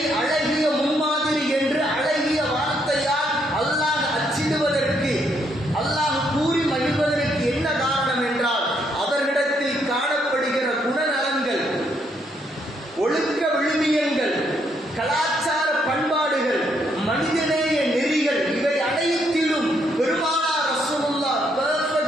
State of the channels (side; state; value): both; normal; correlation 0.73